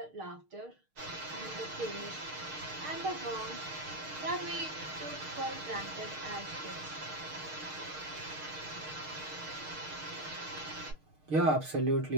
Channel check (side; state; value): left; late; 6.5 ms